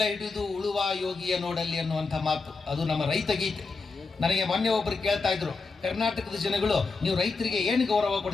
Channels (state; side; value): quieter; right; 4.2 dB